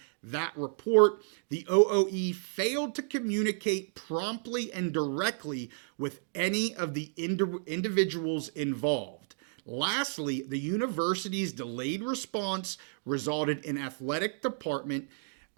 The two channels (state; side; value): silent; left; digital silence